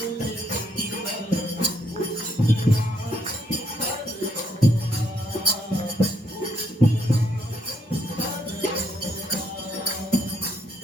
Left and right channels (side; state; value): both; normal; correlation 0.73